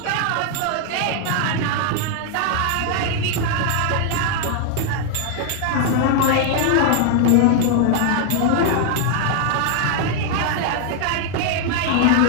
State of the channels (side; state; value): both; different; correlation 0.00